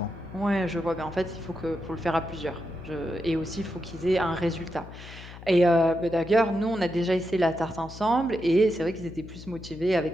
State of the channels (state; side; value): noise; left; hum, 15 dB below the sound